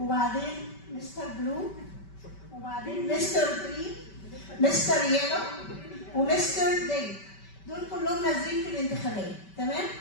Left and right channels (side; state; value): right; late; 5.2 ms